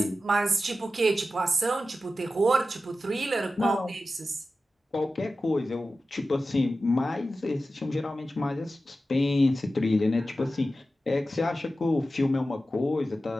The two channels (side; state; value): both; normal; correlation 0.93